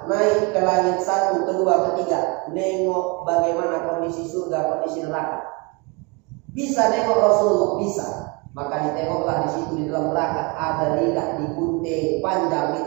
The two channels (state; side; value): quieter; left; 29.8 dB